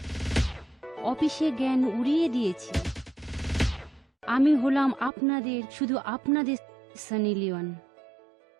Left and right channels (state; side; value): drops out; left; at 5.1 s